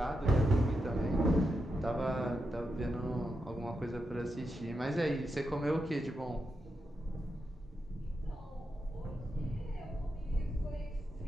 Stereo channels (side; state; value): both; normal; correlation 0.86